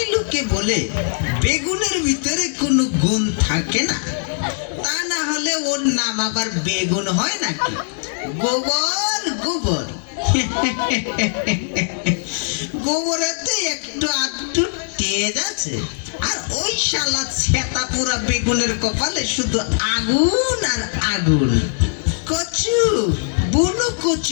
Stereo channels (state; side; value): silent; right; digital silence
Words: লোকে বলে বেগুনের ভিতরে কোনো গুণ থাকে না, তা না হলে ওর নাম আবার বেগুন হয় নাকি? গোবর গোবর, গোবরেতে একটু আধটু তেজ আছে, আর ওই শালা ছেতা পুরা বেগুনের কপালে শুধু আগুন আর আগুন। কচু বুনো